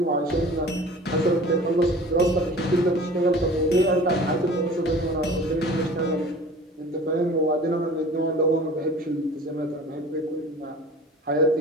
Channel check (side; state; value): both; normal; correlation 0.43